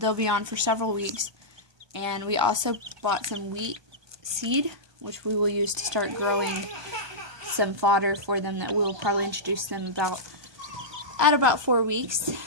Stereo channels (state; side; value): late; left; 1.2 ms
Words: be on for several weeks. And we also bought some wheat seed, which we will use to start growing some fodder for them that we'll probably introduce them at about 4 weeks.